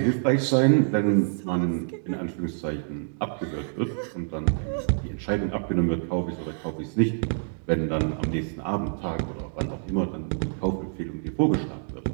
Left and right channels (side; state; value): left; silent; digital silence